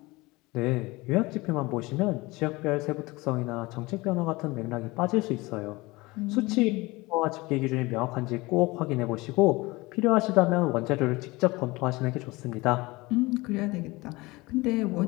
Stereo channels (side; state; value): right; quieter; 22.3 dB